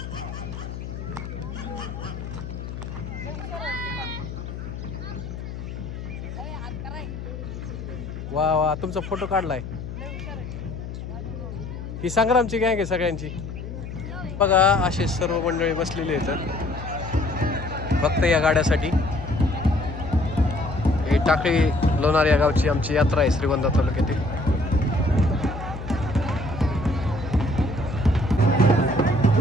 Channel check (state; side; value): noise; left; hum, 8 dB below the sound